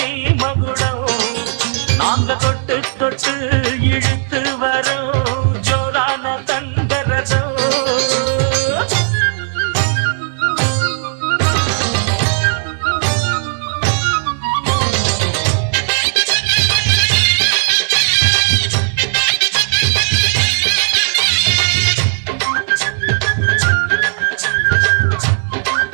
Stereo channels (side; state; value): left; silent; digital silence